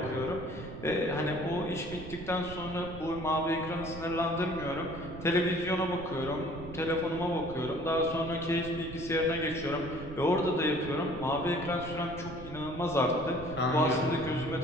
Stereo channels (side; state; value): right; noise; rumble, 12 dB below the sound